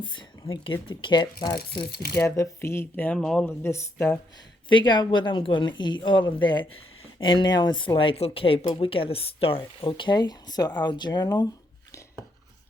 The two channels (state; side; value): normal; both; correlation 0.76